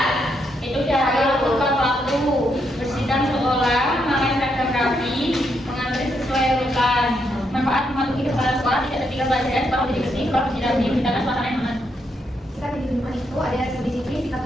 Itu cara melakukan waktu bersihkan sekolah, memakai seragam rapi, mengantri sesuai urutan. Manfaat mematuhi kepala sekolah tidak tertinggal pelajaran, sekolah menjadi bersih, sekolah menjadi rapi, menciptakan suasana yang aman. sikap di lingkungan itu ada disiplin, sikap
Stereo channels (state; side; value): normal; both; correlation 0.78